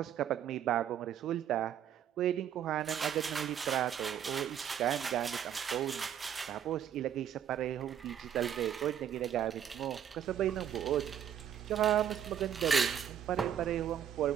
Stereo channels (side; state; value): left; quieter; 9.4 dB